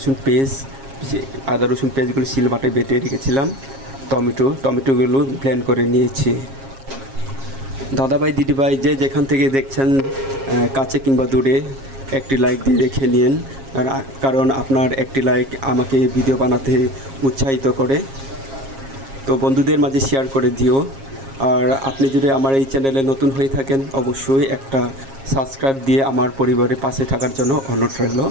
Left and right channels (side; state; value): left; late; 7.4 ms